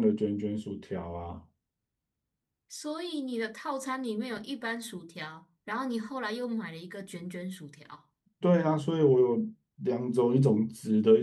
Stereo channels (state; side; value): identical; both; correlation 1.00